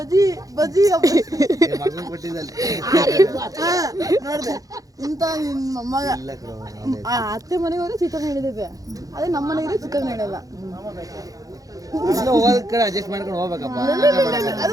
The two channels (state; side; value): late; left; 0.17 ms